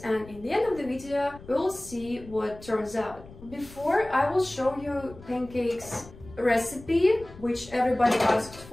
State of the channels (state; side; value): noise; left; rumble, 19 dB below the sound